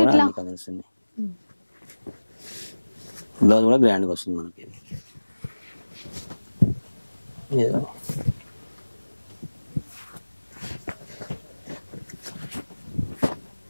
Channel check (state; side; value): inverted; both; correlation -1.00